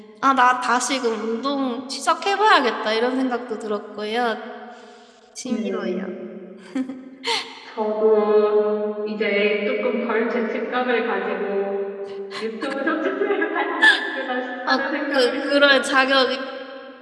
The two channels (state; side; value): identical; both; correlation 1.00